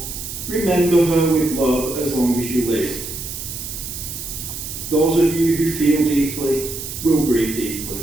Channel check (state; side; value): noise; right; hiss, 8 dB below the sound